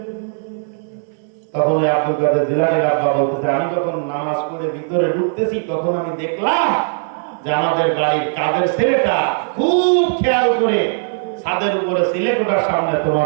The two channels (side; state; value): left; silent; digital silence